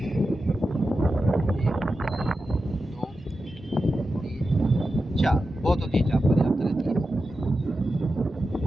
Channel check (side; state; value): both; normal; correlation 0.91